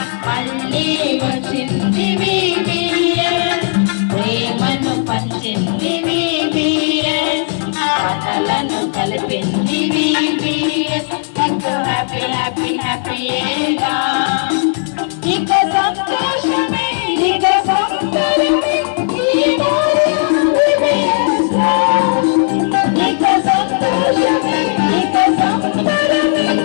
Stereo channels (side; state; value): right; silent; digital silence